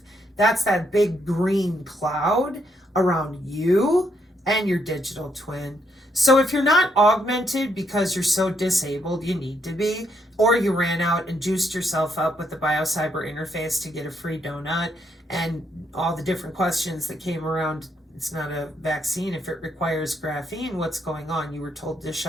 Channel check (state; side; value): normal; both; correlation 0.75